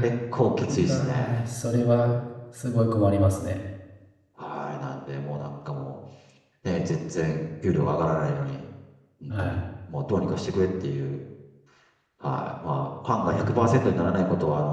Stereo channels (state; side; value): identical; both; correlation 1.00